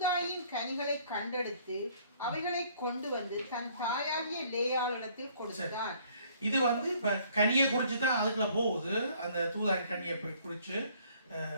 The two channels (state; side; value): inverted; both; correlation -0.60